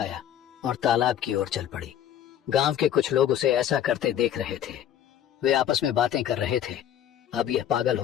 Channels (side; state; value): right; quieter; 10.4 dB